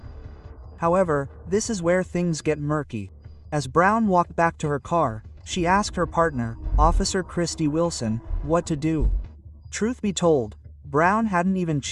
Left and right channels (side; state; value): both; identical; correlation 1.00